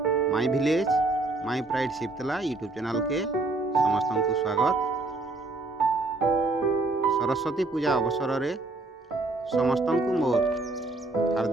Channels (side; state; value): left; quieter; 3.2 dB